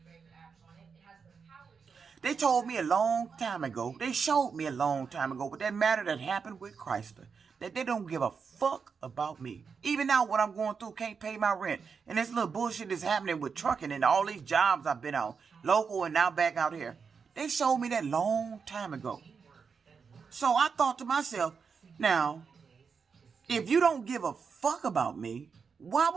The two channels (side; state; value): left; quieter; 5.8 dB